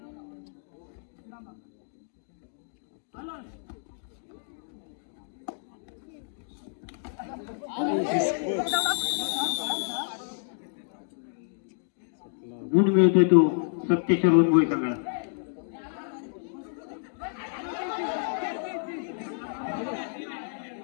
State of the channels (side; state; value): right; silent; digital silence